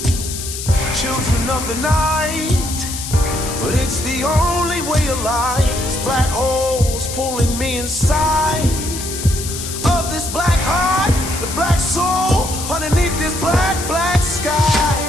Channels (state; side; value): noise; left; hiss, 7 dB below the sound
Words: children of the night, but it's the only way of life. It's black holes pulling me inside of this black heart, the black soul underneath this black sky.